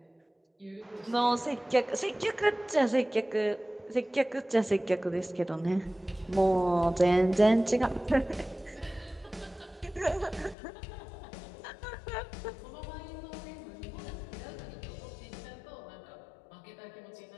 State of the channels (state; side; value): drops out; right; at 10.6 s